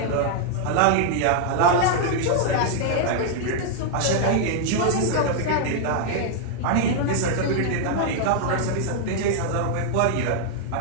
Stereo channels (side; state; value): both; different; correlation 0.00